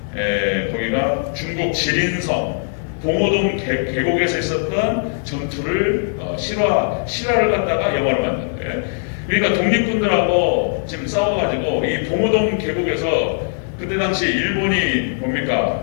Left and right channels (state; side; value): silent; right; digital silence